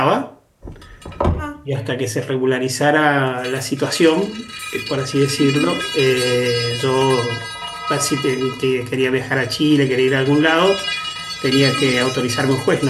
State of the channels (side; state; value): both; identical; correlation 1.00